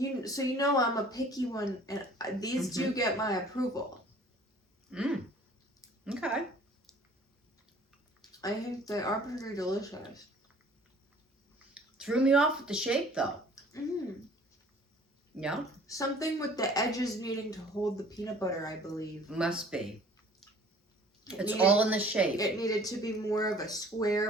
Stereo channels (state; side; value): normal; both; correlation 0.52